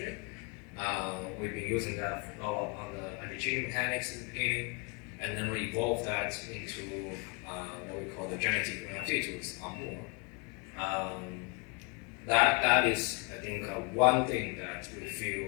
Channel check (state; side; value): quieter; right; 32.4 dB